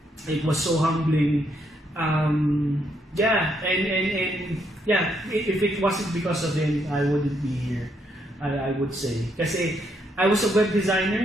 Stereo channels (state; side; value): normal; both; correlation 0.75